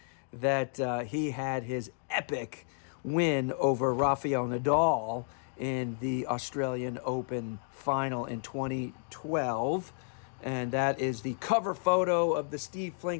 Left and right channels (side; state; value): right; silent; digital silence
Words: that he had his epic win over Rafael Nadal in the Australian Open final in 2012. And that is the cover photo of the Steve